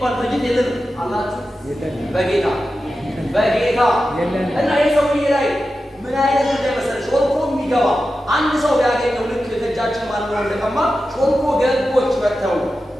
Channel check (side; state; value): both; normal; correlation 0.92